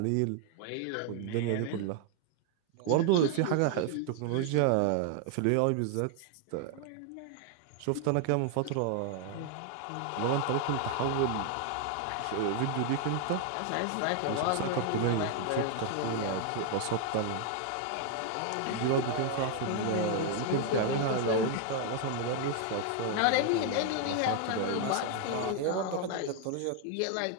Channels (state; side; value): different; both; correlation 0.00